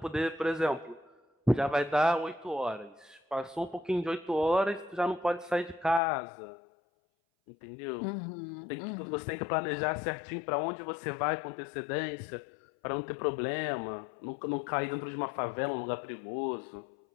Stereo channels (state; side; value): drops out; right; at 6.0 s